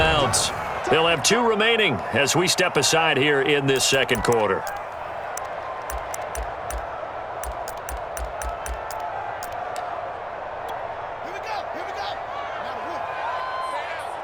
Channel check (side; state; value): both; identical; correlation 1.00